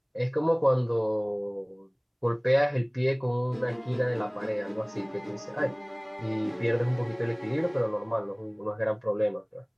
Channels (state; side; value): identical; both; correlation 1.00